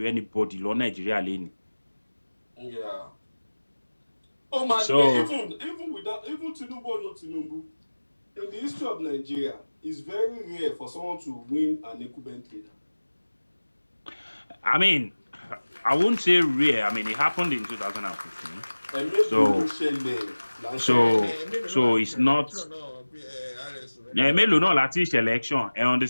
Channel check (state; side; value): inverted; both; correlation -1.00